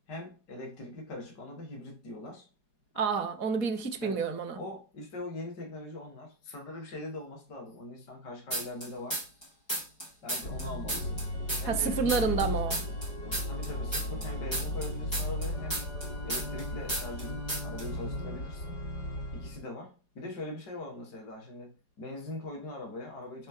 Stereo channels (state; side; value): late; right; 4.8 ms